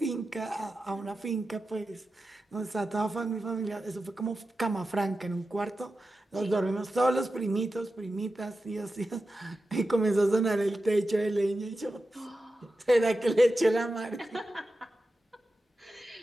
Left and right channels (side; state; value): both; normal; correlation 0.92